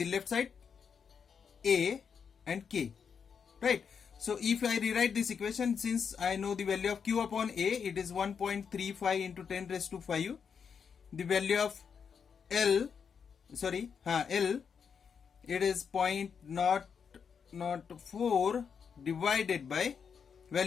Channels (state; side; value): quieter; right; 6.6 dB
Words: left side, A and K. Right. So if I rewrite this equation, since I know the value of Q upon A, it is 1.35 into 10 raised to 5. The value of L, it is 0.004 divided by